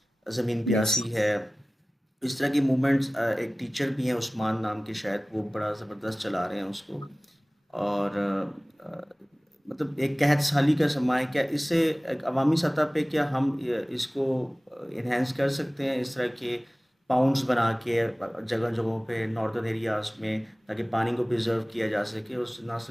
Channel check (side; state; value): both; normal; correlation 0.98